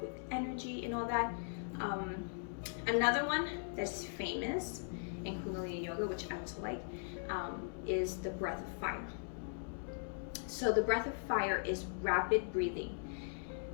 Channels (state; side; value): silent; right; digital silence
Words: energy and all that. Another one that's famous in Kundalini yoga, which I also like, is the breath of fire. So the breath of fire is rapid breathing.